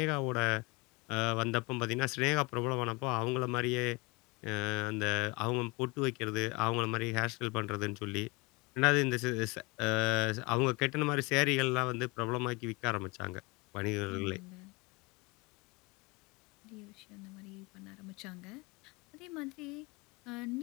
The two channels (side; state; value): right; quieter; 26.4 dB